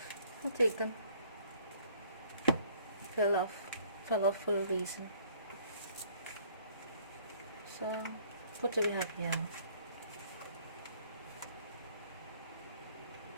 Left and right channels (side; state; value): both; inverted; correlation -0.59